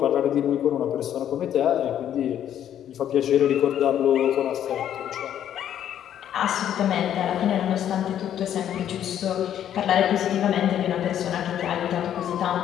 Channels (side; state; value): right; quieter; 10.4 dB